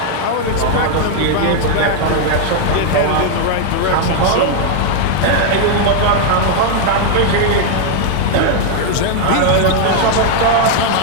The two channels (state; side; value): different; both; correlation 0.00